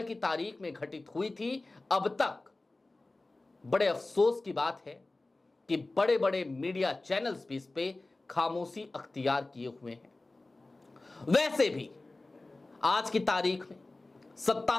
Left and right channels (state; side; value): quieter; right; 3.1 dB